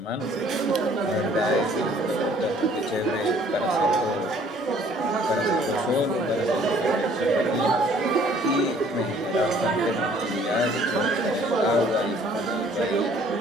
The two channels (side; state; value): both; normal; correlation 0.57